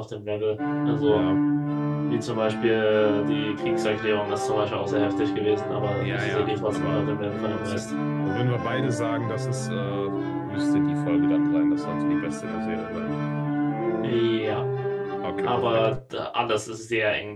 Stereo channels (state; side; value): identical; both; correlation 1.00